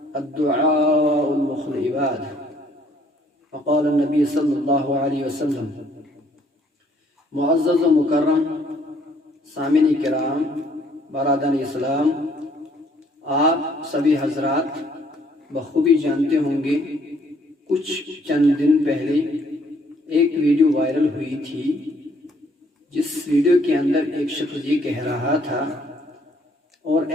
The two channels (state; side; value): normal; both; correlation 0.64